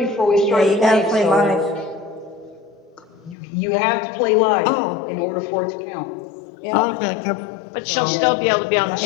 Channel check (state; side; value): drops out; right; at 3.4 s